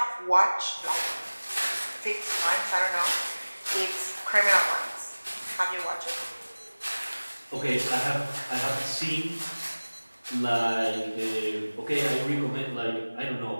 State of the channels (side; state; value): both; inverted; correlation -1.00